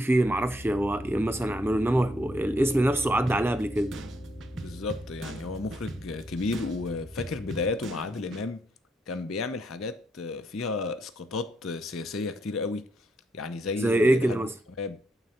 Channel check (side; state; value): both; normal; correlation 0.77